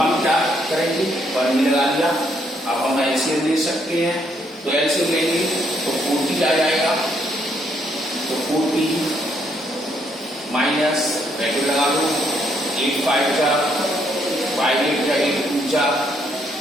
हम क्या करेंगे? 1 में लगा दिया। अब हम एलसीएम ले सकते हैं, तो एलसीएम लेंगे तो 40 आ जाएगा। तो 40 माइनस ब्रैकेट लगा लो, 8/5 जा, 5/8 जा, 8/2 जा,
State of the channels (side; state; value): both; normal; correlation 0.72